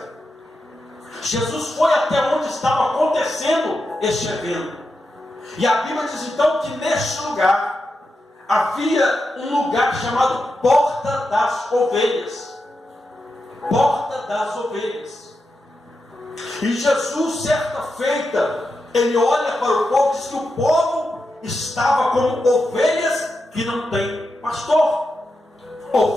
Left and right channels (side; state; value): both; normal; correlation 0.88